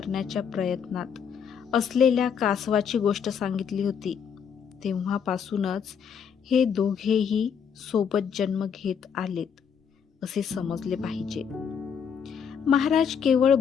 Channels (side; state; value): right; quieter; 7.2 dB